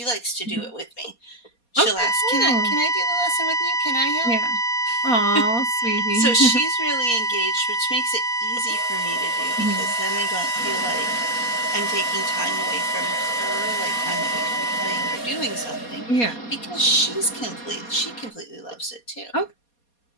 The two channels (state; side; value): late; right; 4.2 ms